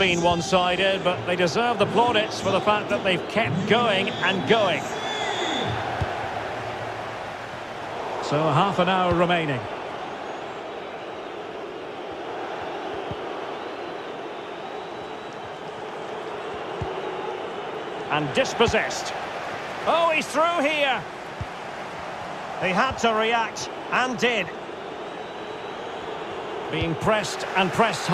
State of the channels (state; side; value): identical; both; correlation 1.00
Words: one-sided, but they deserve the plaudits for the fact that they've kept going and going. So half an hour remaining. And dispossessed. Oh, he's through here. He had to react, and did. Being pressed and pressed